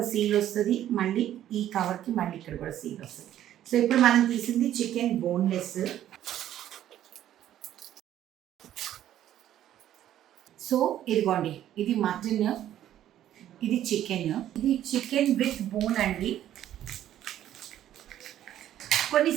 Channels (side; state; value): left; quieter; 11.8 dB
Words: సీల్ వస్తుంది, మళ్ళీ ఈ కవర్కి మళ్ళీ ఇక్కడ కూడా సీల్ వస్తుంది. సో ఇప్పుడు మనం తీసింది చికెన్ బోన్లెస్. సో ఇదిగోండి, ఇది మటన్, ఇది చికెన్. ఇది చికెన్ విత్ బోన్ అండి.